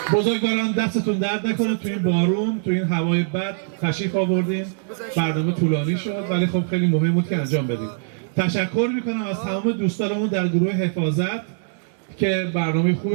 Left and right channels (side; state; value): left; silent; digital silence